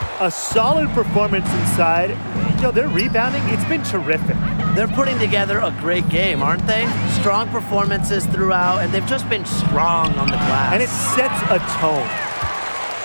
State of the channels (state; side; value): inverted; both; correlation -1.00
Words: A solid performance inside. You know, their rebounding, it's been terrific. They're putting together a great game, aren't they? Strong performances throughout, and they've just been strong on the glass. And it sets a tone.